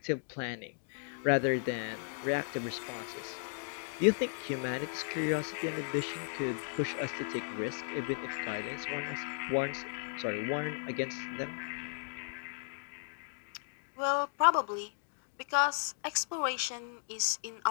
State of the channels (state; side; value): silent; right; digital silence